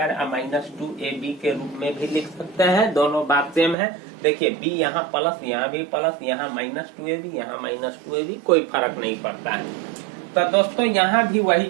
minus 2ab के रूप में भी लिख सकते हैं। दोनों बात सेम है। देखिए b यहाँ प्लस, यहाँ भी प्लस, यहाँ माइनस 2ab, यहाँ माइनस 2ab, कोई फर्क नहीं पड़ता है। तो दोस्तों यहाँ भी वही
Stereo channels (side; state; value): left; drops out; at 3.8 s